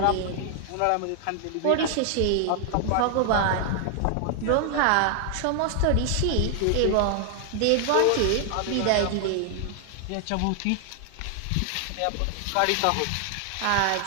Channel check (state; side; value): different; both; correlation 0.00